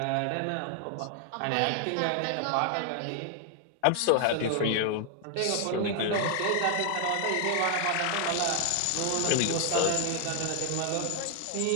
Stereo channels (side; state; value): both; different; correlation 0.00